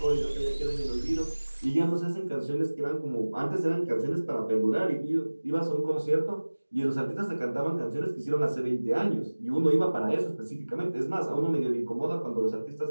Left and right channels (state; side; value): inverted; both; correlation -1.00